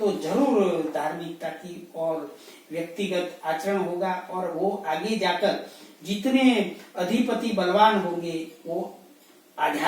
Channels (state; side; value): identical; both; correlation 1.00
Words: जरूर धार्मिकता की और व्यक्तिगत आचरण होगा, और वो आगे जाकर जितने अधिपति बलवान होंगे वो